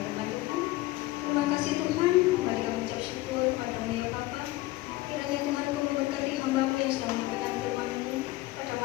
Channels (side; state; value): right; quieter; 18.4 dB